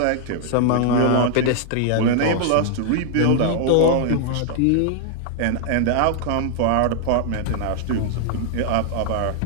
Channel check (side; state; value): both; different; correlation 0.00